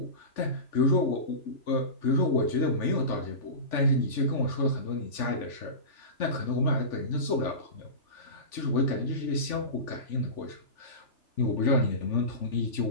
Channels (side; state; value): right; late; 3.5 ms